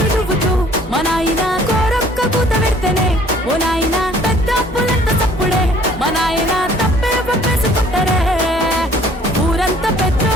దువ్వుతూ మా నాయన కోరొక్క కూత పెడితేనే ఓ నాయన పెద్ద అప్పులంత తప్పుడే మా నాయన తప్పే ఒప్పేసుకుంటారే ఊరంతా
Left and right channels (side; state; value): both; normal; correlation 0.56